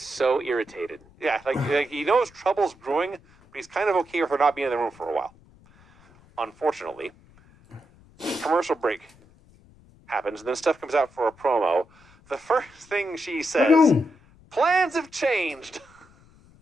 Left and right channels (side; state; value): left; noise; rumble, 27 dB below the sound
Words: so irritated. yeah, like he knows trouble's brewing, but he's kind of okay with her not being in the room for a while. Unfortunately, commercial break happens, and then Steph comes out for a promo. The first thing she says, plans have changed.